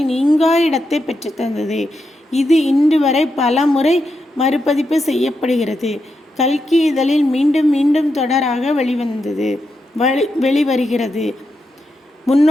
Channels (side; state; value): both; normal; correlation 0.85